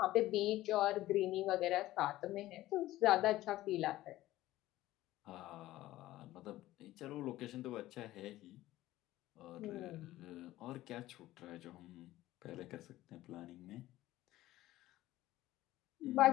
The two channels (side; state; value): right; quieter; 15.9 dB